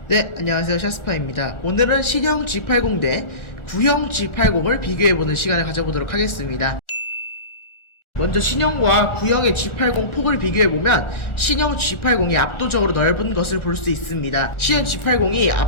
네, 안녕하세요. 샤스파입니다. 오늘은 신형 G80 대 구형 G80을 비교해보는 시간을 가져보도록 하겠습니다. 먼저 신형과 구형의 G80 폭을 비교해보면 신형 G80이 압도적으로 넓은 것을 볼 수 있습니다. 신형 G80이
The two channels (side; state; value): right; late; 1.4 ms